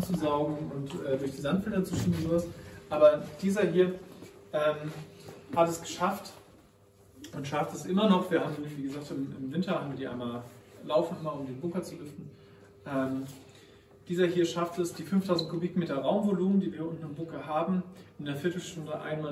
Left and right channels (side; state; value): both; identical; correlation 1.00